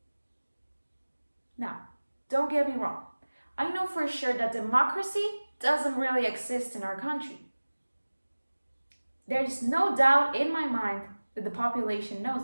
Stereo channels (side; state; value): both; inverted; correlation -1.00